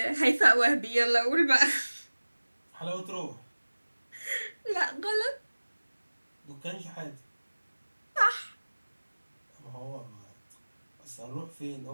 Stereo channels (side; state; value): both; inverted; correlation -1.00